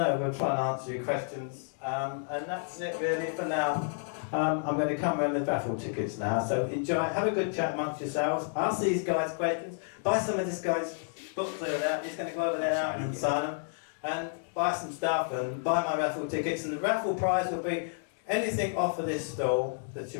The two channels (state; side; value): silent; right; digital silence